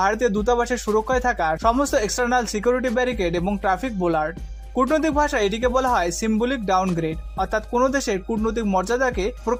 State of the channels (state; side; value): identical; both; correlation 1.00